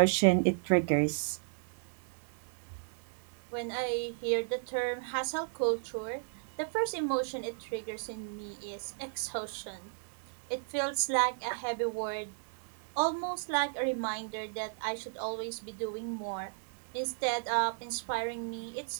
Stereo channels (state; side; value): silent; left; digital silence